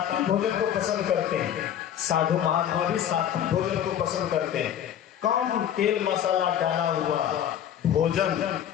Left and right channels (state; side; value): quieter; right; 10.1 dB